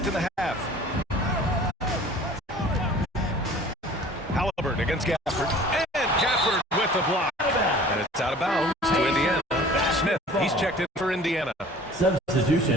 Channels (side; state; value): both; normal; correlation 0.47